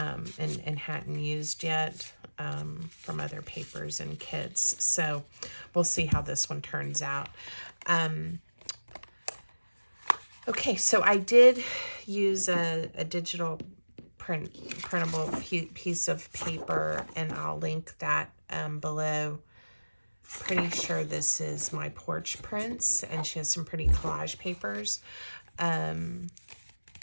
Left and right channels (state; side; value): inverted; both; correlation -1.00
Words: hadn't used yet from other papers and kits. So we'll see how this one turns out. Okay, so I did use a digital printable piece of paper, and I'll link that below. Pretty sure this is my porch prints, and she has some pretty collage papers. And